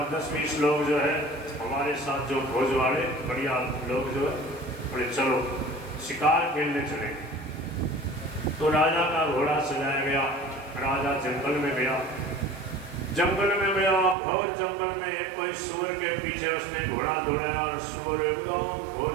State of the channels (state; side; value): drops out; left; at 14.2 s